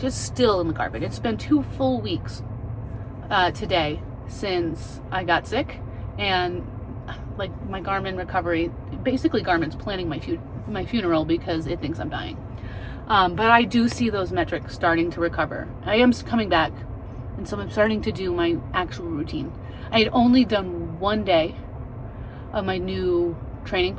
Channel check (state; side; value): identical; both; correlation 1.00